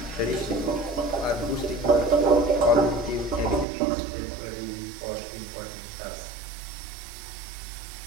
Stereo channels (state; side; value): drops out; left; at 3.7 s